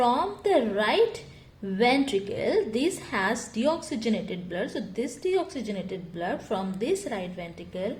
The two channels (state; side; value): identical; both; correlation 1.00